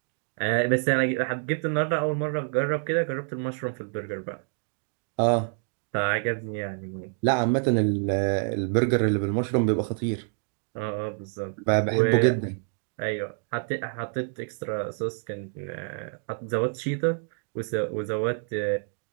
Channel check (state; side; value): silent; left; 60 dB below the other